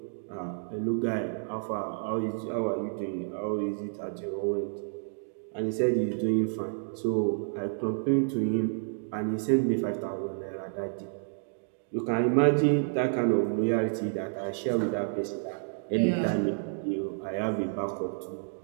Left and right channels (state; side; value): silent; left; digital silence